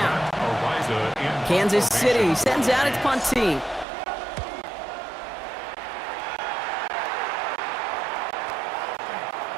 Kansas City sends out its punt team.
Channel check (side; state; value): left; drops out; at 3.9 s